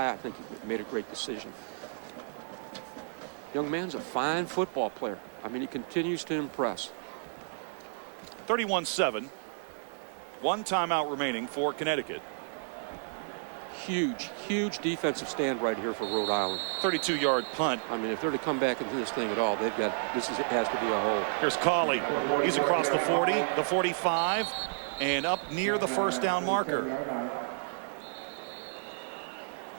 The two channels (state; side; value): silent; left; digital silence